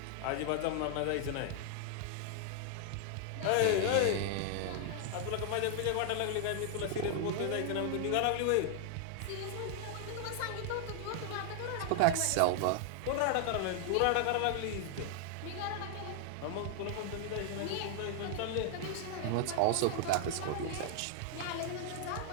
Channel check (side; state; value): both; different; correlation 0.00